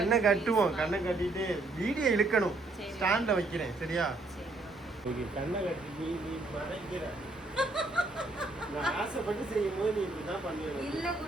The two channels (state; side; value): quieter; left; 3.1 dB